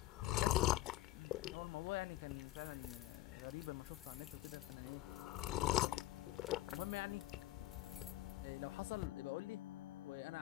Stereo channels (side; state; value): right; quieter; 16.4 dB